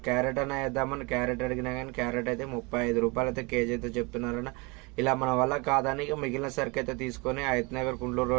క్యారెట్ అన్న వేద్దామని క్యారెట్ అడిగినా కానీ క్యారెట్ అయితే 35 రూపాయలు అయితే కేజీ అయితే చెప్తున్నారన్న. ఇలా మన వల్ల కాదని మిగిలిన సరికి అయితే తీసుకొని హైత్ నగర్ కుంట్లూరు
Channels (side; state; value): left; quieter; 28.1 dB